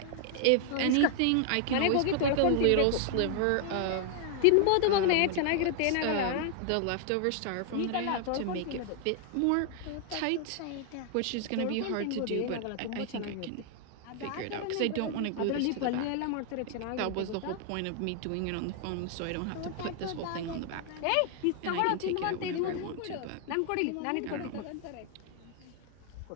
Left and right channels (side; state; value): both; different; correlation 0.00